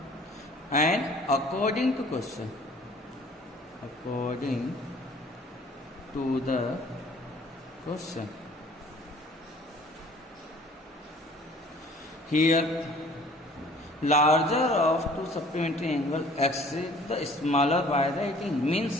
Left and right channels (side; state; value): both; normal; correlation 0.52